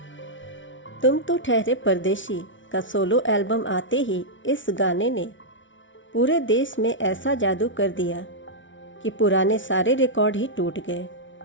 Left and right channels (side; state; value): right; late; 0.56 ms